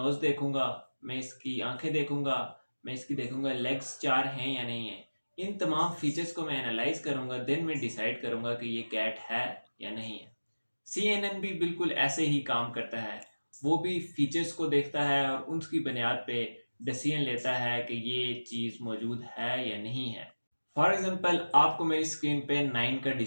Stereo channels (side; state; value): both; inverted; correlation -1.00